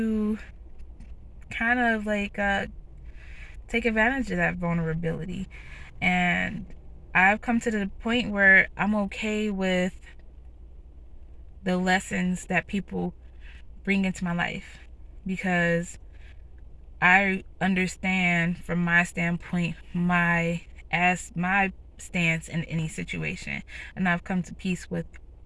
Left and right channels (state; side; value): identical; both; correlation 1.00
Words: kind of take advantage of that vulnerability, and I've come to the point where I'm okay with the lessons that people bring into my life because I understand from my standpoint my stance in any situation, and I've come to peace with